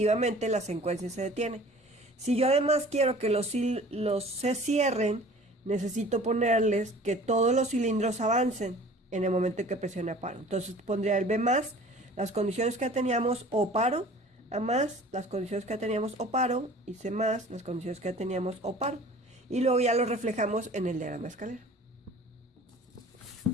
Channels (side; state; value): both; normal; correlation 0.46